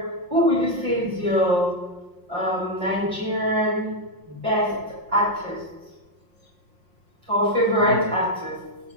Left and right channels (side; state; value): left; late; 5.6 ms